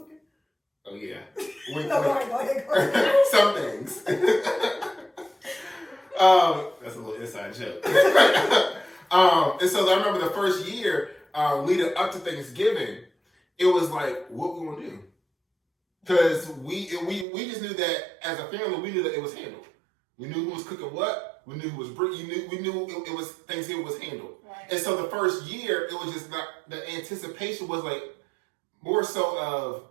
Oh, yeah. Wink, No, wink. go ahead. Some things. That's a little inside joke. And so I remember the first year leading up to Thanksgiving, it was like, what we gonna do? Because we just knew that as a family, we knew that it was handled. We knew who was cooking what. We knew who was bringing. We knew it was Thanksgiving was handled. Right. And so the first year, it was just not, the anticipation was like more so of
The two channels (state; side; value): drops out; left; at 17.2 s